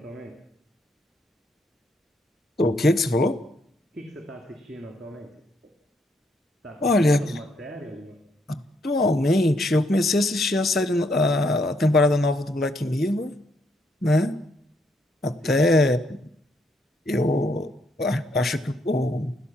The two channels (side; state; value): both; normal; correlation 0.73